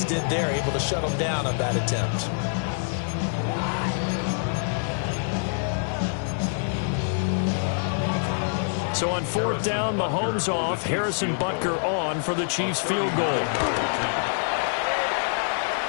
did there, able to shut them down on that attempt? So on 4th down, Mahomes off, Harrison Butker on for the Chiefs field goal.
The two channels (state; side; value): silent; right; 61 dB below the other